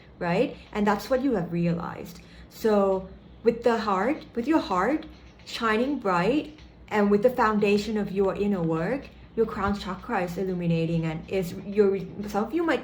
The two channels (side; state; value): both; identical; correlation 1.00